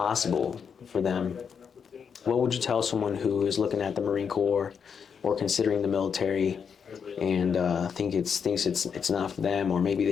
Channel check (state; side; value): quieter; right; 6.7 dB